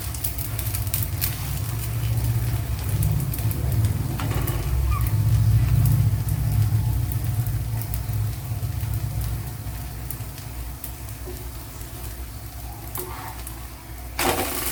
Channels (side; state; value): both; identical; correlation 1.00